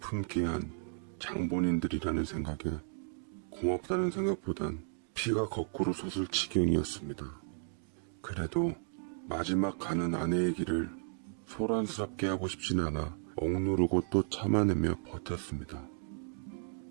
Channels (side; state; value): left; silent; 55 dB below the other